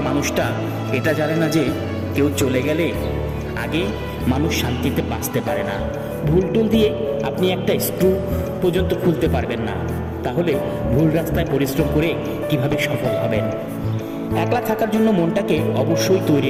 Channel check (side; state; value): both; identical; correlation 1.00